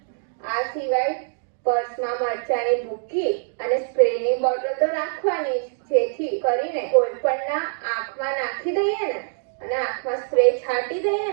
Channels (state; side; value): silent; left; digital silence